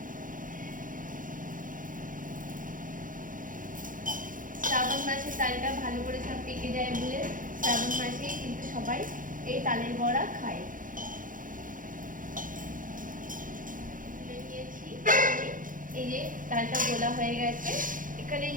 শ্রাবণ মাসে তালটা ভালো করে সব পেকে যায় বলে শ্রাবণ মাসেই কিন্তু সবাই এই তালের বড়া খায়। এই যে তালটা গোলা হয়ে গেছে, এখানে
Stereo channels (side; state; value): left; late; 0.39 ms